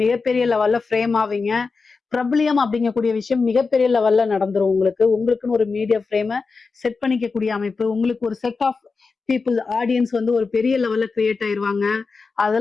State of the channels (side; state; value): right; quieter; 4.5 dB